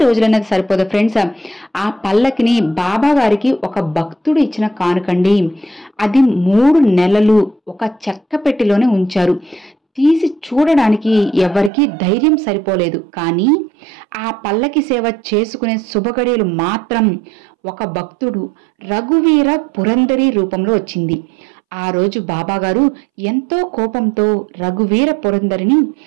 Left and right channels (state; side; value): drops out; left; at 11.7 s